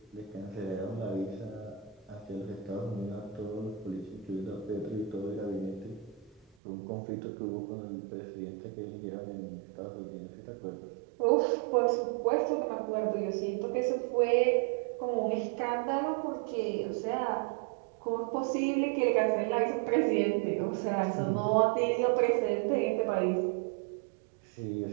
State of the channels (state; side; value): drops out; left; at 6.5 s